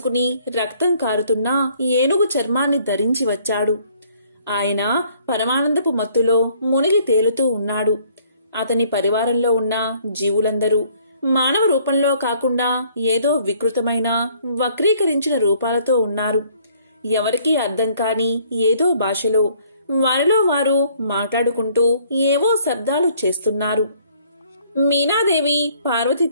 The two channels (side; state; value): both; inverted; correlation -0.61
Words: రక్తం కారుతున్న ఏనుగు చర్మాన్ని ధరించి వచ్చాడు. ఆయన పరమానందపు మత్తులో మునిగి తేలుతూ ఉన్నాడు. అతని పరివారంలో ఉన్న జీవులందరూ మానవ రూపంలో కాకుండా ఏదో వికృతమైన వక్రీకరించిన రూపాలతో ఉన్నారు. ఎవరికీ అర్థం కాని ఏదో భాషలో వారిలో వారు మాట్లాడుకుంటూ ఏవో శబ్దాలు చేస్తున్నారు. మీనాదేవి పార్వతి